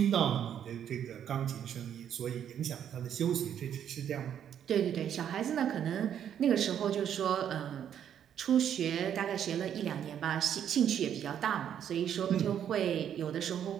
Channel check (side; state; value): left; quieter; 9.3 dB